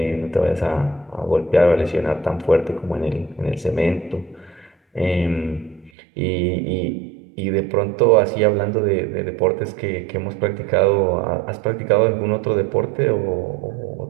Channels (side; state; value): left; drops out; at 5.9 s